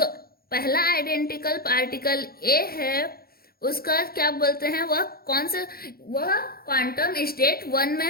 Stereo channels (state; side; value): late; right; 0.44 ms